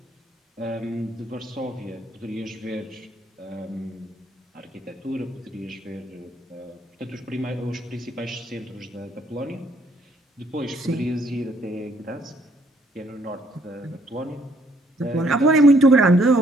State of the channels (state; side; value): normal; both; correlation 0.67